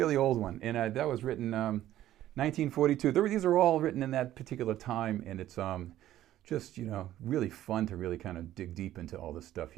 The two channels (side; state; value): left; quieter; 13.3 dB